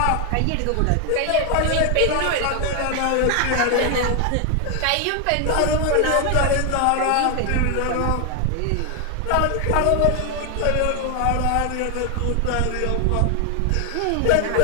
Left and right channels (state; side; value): different; both; correlation 0.00